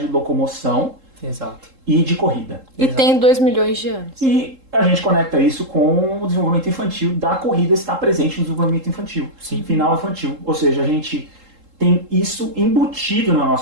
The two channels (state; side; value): late; left; 3.7 ms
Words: de locomoção. Exato. E de corrida. E tem 2 milhões de anos. E a gente conecta isso com o desenvolvimento infantil, da corrida estar presente no desenvolvimento infantil. Sim. Final infantil. Ou seja, a gente tem isso embutido na